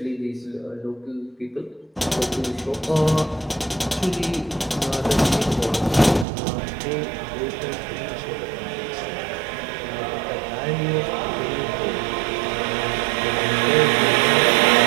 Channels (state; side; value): drops out; left; at 6.2 s